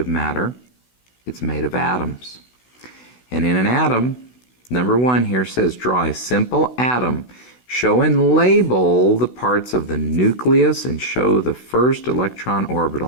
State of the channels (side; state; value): right; late; 16 ms